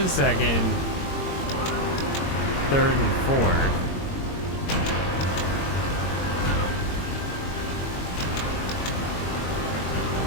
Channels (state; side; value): late; right; 22 ms